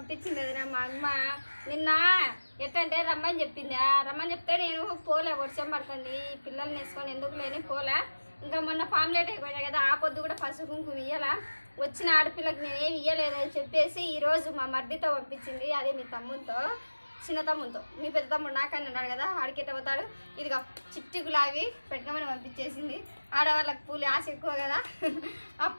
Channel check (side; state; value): both; inverted; correlation -1.00